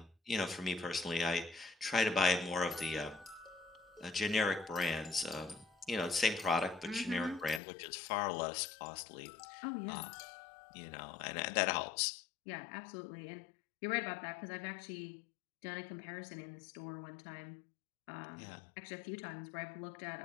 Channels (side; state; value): right; drops out; at 7.6 s